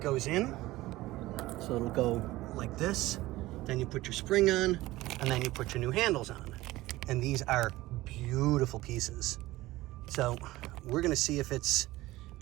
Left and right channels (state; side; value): quieter; left; 18.0 dB